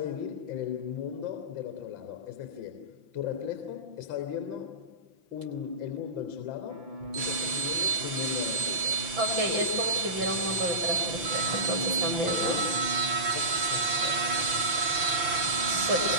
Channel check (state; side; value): late; left; 5.9 ms